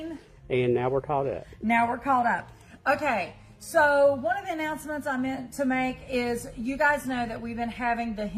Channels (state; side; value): identical; both; correlation 1.00